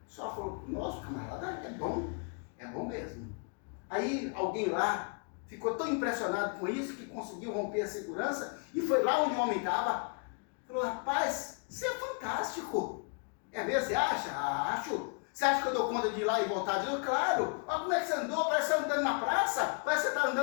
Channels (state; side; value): quieter; right; 39.1 dB